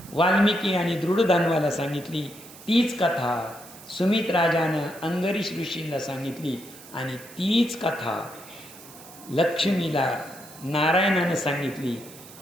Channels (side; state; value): right; noise; hiss, 19 dB below the sound